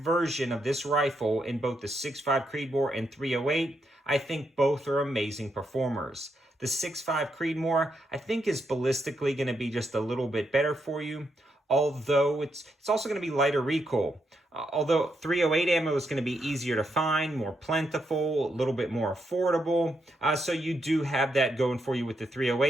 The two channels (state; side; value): normal; both; correlation 0.80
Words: of this rifle in both the 6.5 Creedmoor and 308, I think both are amazing performers. The 6.5 Creedmoor, I think, is ballistically going to be just a little bit better for you, although it's also going to be lighter recoil. Although 308 ammo is going to be easier to find, more plentiful, a little bit more affordable. So you do have that going for you with the